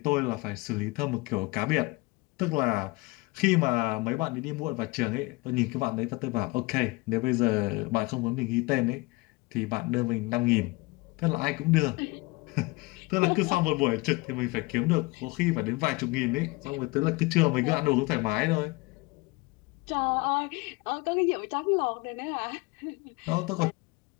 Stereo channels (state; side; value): quieter; right; 24.3 dB